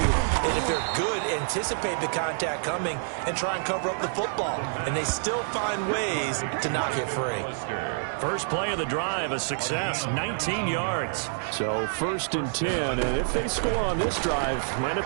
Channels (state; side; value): silent; left; 60 dB below the other